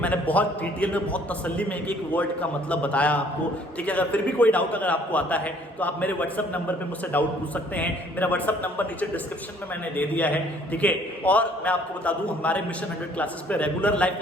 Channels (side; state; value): both; normal; correlation 0.59